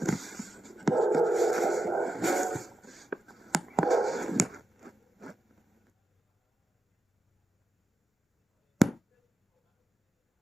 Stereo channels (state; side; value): normal; both; correlation 0.88